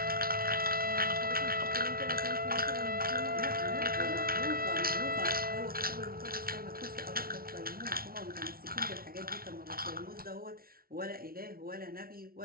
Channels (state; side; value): late; left; 0.43 ms